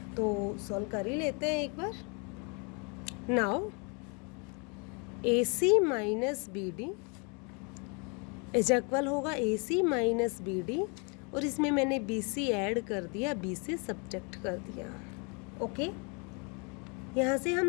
तो सॉल्व कर ही लेते हैं एक बार। Now AC minus BD is equal होगा AC माइनस BD, और इसमें मैंने BC ऐड कर दिया, BC सब्ट्रैक्ट कर दिया। ओके, यहाँ से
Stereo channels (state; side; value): quieter; right; 34.4 dB